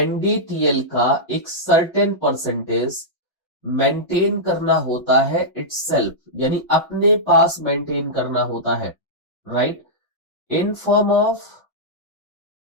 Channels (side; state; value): both; normal; correlation -0.11